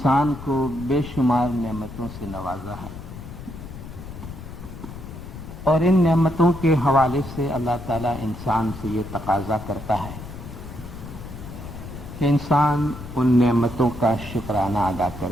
کو بے شمار نعمتوں سے نوازا ہے، اور ان نعمتوں کے حوالے سے اللہ تعالیٰ انسان سے یہ تقاضا کرتا ہے کہ انسان ان نعمتوں کا شکرانہ ادا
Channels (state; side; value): noise; left; rumble, 12 dB below the sound